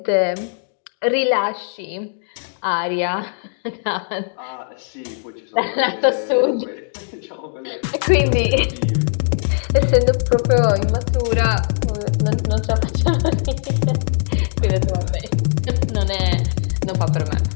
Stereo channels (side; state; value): right; silent; digital silence